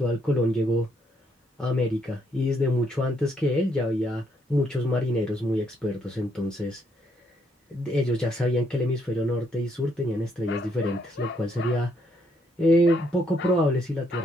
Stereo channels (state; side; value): normal; both; correlation 0.73